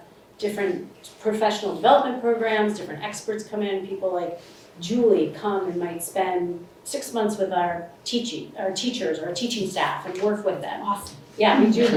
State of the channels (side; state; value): both; identical; correlation 1.00